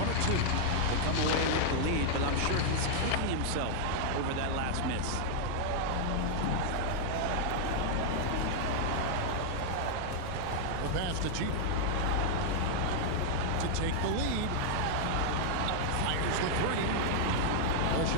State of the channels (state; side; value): different; both; correlation -0.01